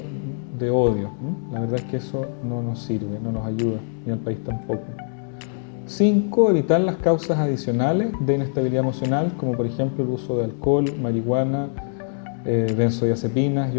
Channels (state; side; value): silent; right; digital silence